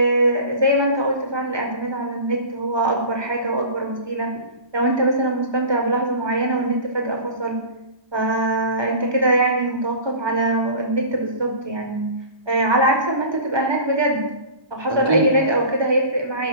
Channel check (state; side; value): late; left; 1.2 ms